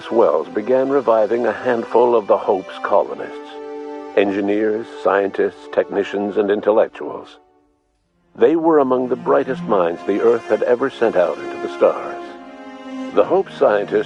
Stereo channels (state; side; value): identical; both; correlation 1.00